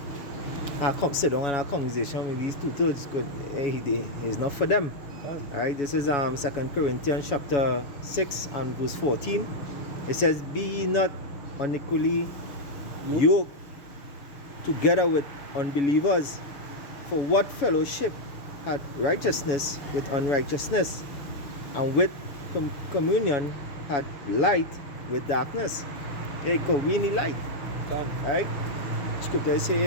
sit down and have a conversation with these two-thirds, because hey, it's not for them. Right? This is 2 Corinthians chapter 6 and verse 14. It says, be ye not unequally yoked together with unbelievers, for what fellowship had righteousness with unrighteousness, and with communion had light with darkness. Hey, because we need light. Right? Scripture say,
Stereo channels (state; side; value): late; right; 7.1 ms